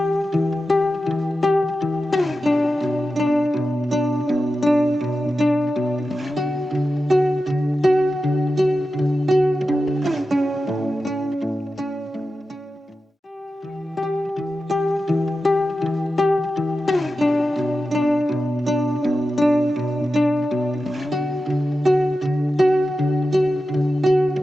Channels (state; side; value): normal; both; correlation 0.92